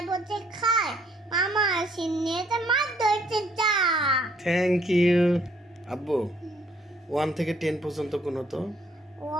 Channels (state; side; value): normal; both; correlation 0.65